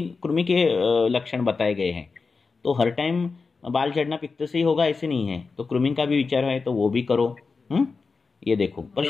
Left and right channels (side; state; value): right; quieter; 4.5 dB